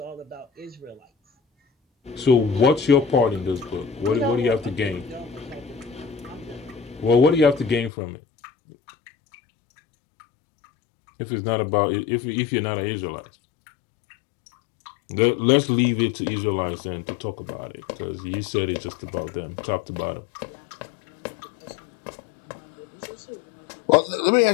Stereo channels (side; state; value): right; drops out; at 7.9 s